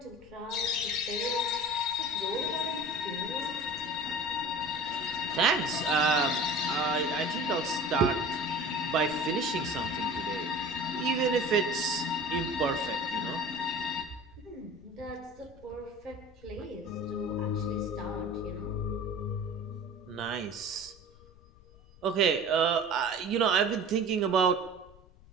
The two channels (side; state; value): left; noise; rumble, 24 dB below the sound